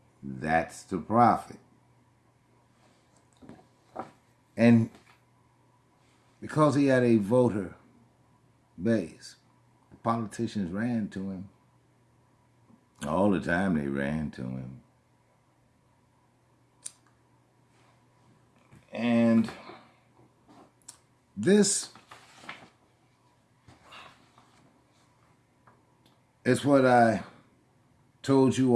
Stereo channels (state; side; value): identical; both; correlation 1.00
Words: That's the prophet. And because he had a voter base, politicians ran to him. All the time they ran to him. And this is what I told you